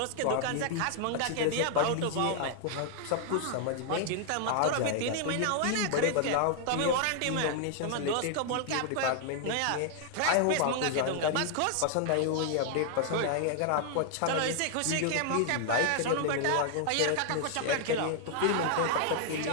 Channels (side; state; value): both; different; correlation 0.00